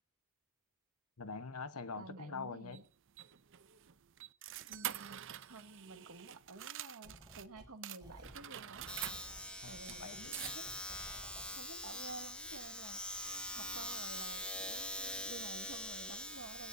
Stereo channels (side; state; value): both; normal; correlation -0.10